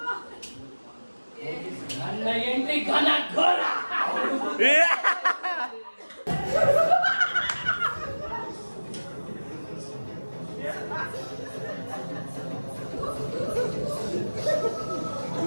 ನನ್ನ ಎಂಟ್ರಿ ಘನ ಘೋರ.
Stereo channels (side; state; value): both; inverted; correlation -1.00